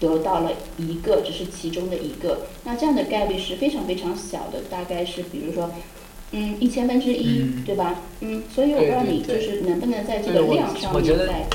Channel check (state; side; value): identical; both; correlation 1.00